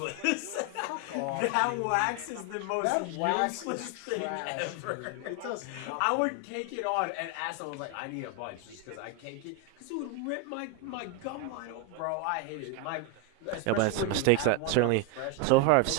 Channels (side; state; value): both; different; correlation 0.01